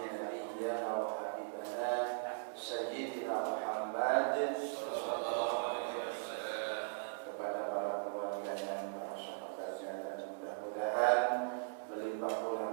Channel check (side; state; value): left; silent; digital silence